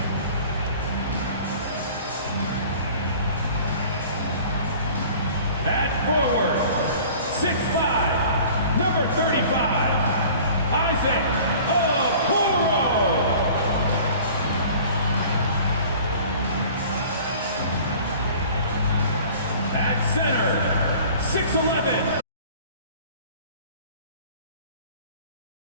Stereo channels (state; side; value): inverted; both; correlation -0.46